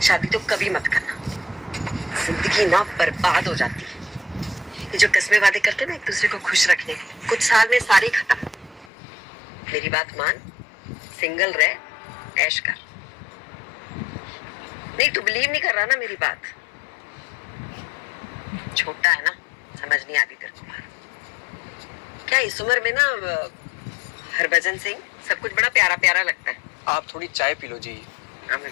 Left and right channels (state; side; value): drops out; right; at 8.9 s